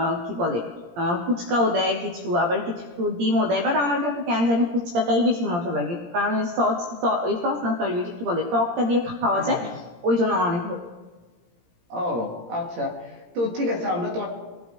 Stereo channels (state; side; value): late; left; 17 ms